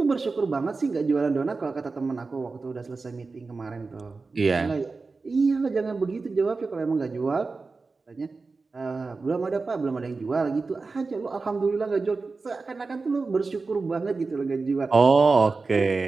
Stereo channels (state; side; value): quieter; left; 4.1 dB